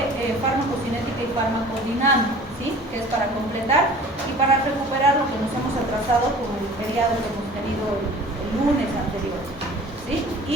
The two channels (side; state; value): both; normal; correlation 0.45